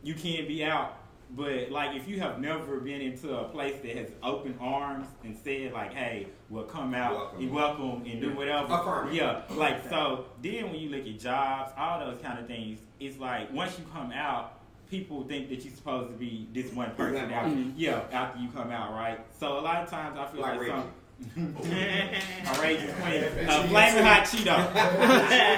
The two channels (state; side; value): identical; both; correlation 1.00